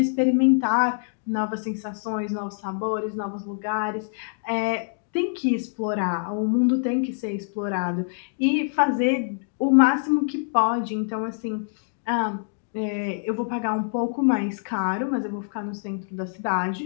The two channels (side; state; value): right; silent; digital silence